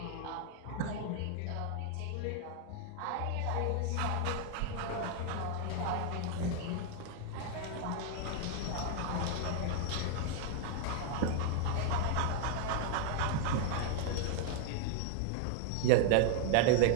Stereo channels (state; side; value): different; both; correlation 0.00